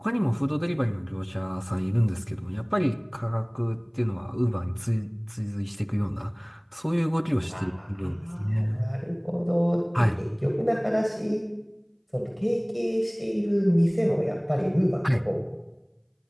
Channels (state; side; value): identical; both; correlation 1.00